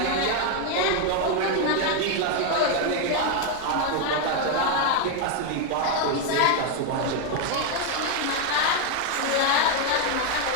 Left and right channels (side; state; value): both; different; correlation 0.01